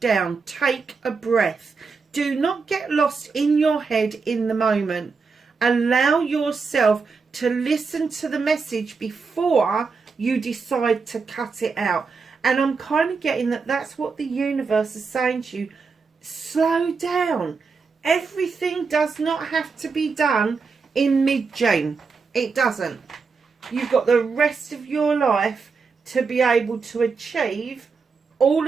Take a breath. Do not get lost in your head in the moment. Allow yourself to listen to the message before you decide to cut it out. And I'm kind of getting that that's what the universe is saying to you. Slow down. Everything does not have to be done in mid-June. It doesn't. You've got the rest of your life to be able to achieve all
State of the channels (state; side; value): quieter; left; 4.9 dB